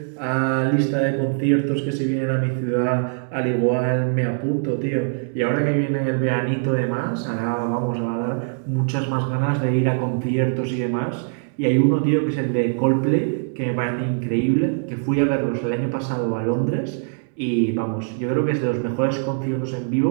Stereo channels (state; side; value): silent; left; digital silence